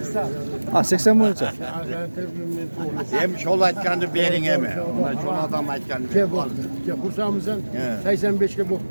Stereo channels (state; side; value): inverted; both; correlation -1.00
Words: Ha, 80 bo'yicha. Hem şol aytganды bering emi. Şol adam aytganды. Gel bak. Gel kursan mı sen? 85'e bu.